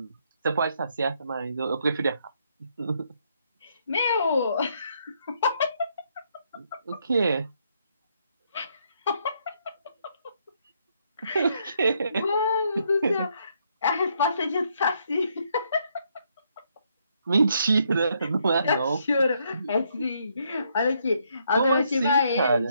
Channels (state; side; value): inverted; both; correlation -0.73